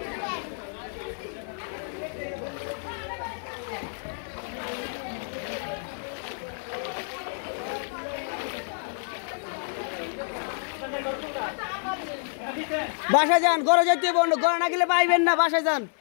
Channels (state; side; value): silent; right; 59 dB below the other